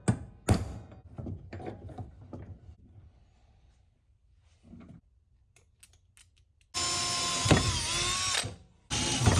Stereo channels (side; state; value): both; identical; correlation 1.00